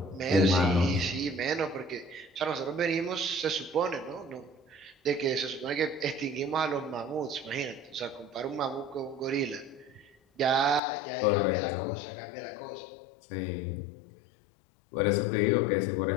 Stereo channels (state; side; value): drops out; right; at 10.8 s